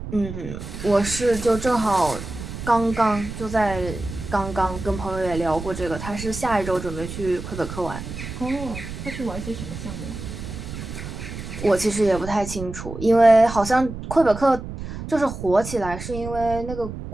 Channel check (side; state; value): right; noise; rumble, 9 dB below the sound